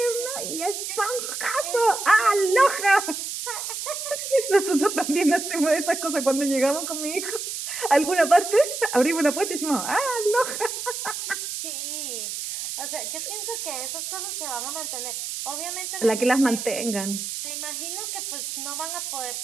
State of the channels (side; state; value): right; noise; hiss, 5 dB below the sound